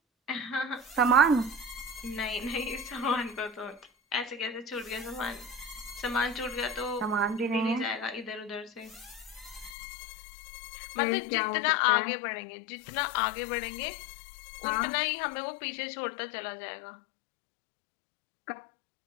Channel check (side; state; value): right; drops out; at 9.7 s